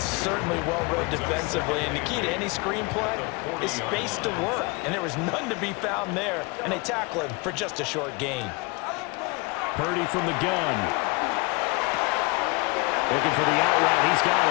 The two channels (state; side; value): quieter; right; 27.4 dB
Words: certainly well-read defensively, and the key to any screenplay is space to work, and there was none to be found there, and they tackle him for just a short gain. Purdy from the gun. Looking for the out route. He's got